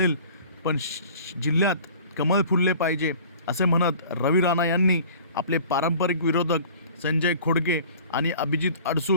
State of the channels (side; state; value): both; inverted; correlation -0.46